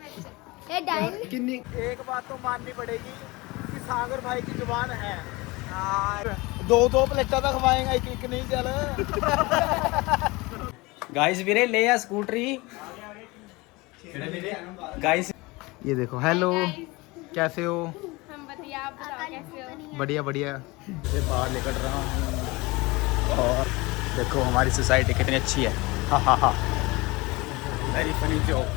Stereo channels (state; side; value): quieter; right; 23.4 dB